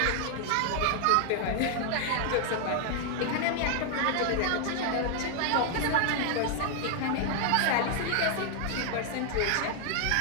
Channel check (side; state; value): both; different; correlation 0.00